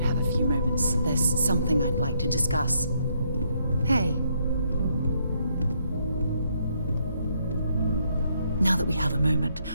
have a few moments, there's something I'd like to discuss. Hey. Now that we have a moment,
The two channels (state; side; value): inverted; both; correlation -0.73